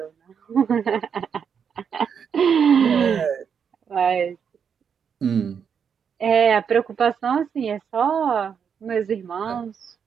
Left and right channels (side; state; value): left; quieter; 7.1 dB